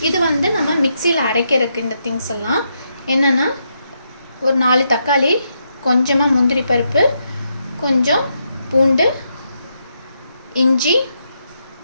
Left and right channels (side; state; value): both; inverted; correlation -0.81